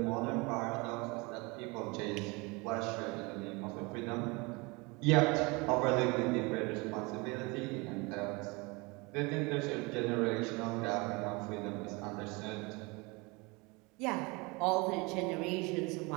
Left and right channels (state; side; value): quieter; left; 26.8 dB